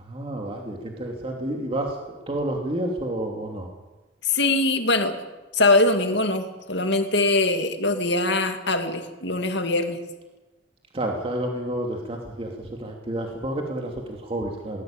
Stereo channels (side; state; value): both; normal; correlation -0.01